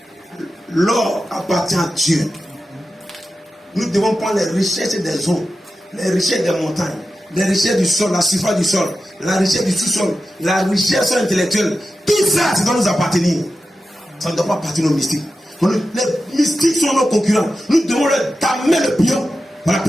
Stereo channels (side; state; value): both; normal; correlation 0.92